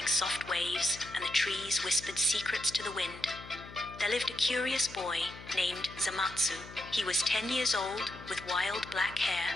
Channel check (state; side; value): noise; left; hum, 16 dB below the sound